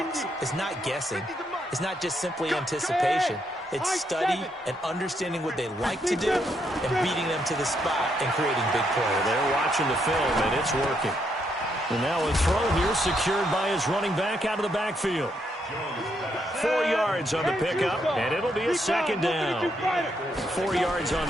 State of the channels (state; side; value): normal; both; correlation 0.77